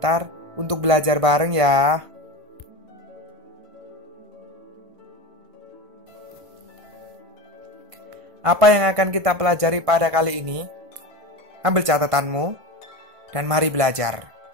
untuk belajar bareng ya. Apa yang akan kita pelajari pada kali ini? Ambil catatanmu dan mari belajar.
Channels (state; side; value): late; left; 1.5 ms